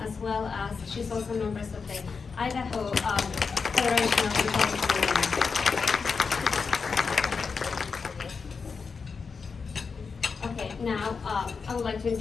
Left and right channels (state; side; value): quieter; right; 5.2 dB